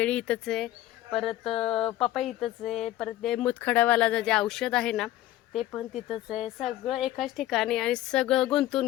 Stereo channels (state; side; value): quieter; right; 14.6 dB